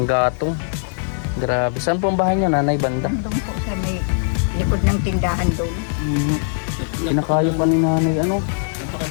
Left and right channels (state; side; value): silent; right; digital silence